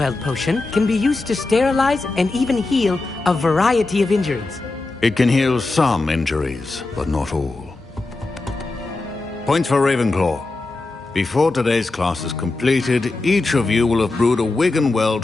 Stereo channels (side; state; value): right; quieter; 3.3 dB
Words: potion can be used to sterilize and even heal a variety of injuries. It can heal some injuries, but not all. Points for Ravenclaw. Before today's class is completed, each of you will have brewed a